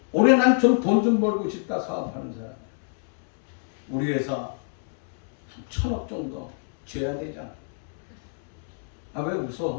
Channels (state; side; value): silent; right; 60 dB below the other